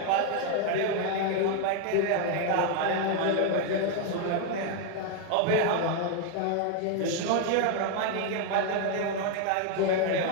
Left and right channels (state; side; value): different; both; correlation 0.01